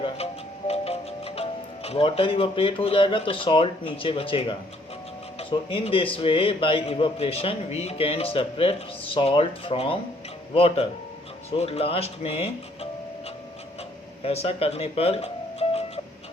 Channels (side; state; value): both; normal; correlation 0.64